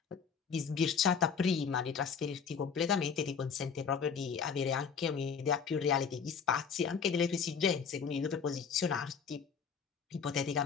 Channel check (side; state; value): right; quieter; 6.4 dB